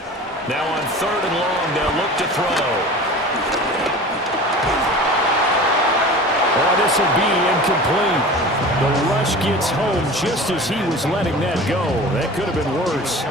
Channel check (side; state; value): both; normal; correlation 0.37